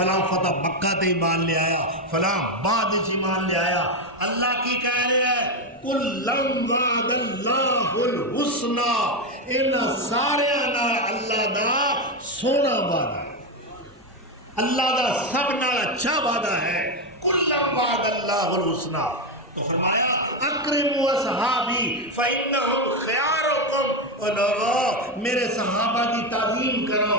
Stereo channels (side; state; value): both; normal; correlation 0.09